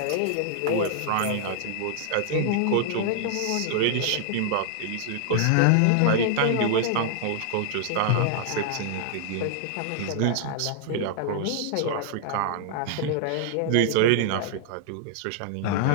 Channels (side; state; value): both; different; correlation 0.00